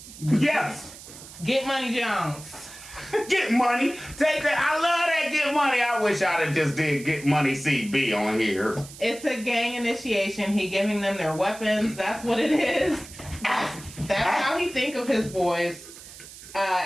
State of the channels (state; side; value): noise; right; hiss, 16 dB below the sound